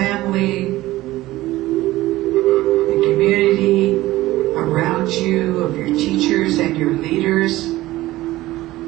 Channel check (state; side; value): quieter; left; 17.1 dB